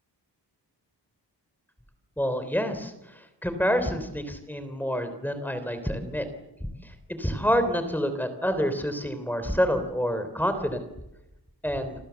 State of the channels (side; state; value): both; normal; correlation 0.79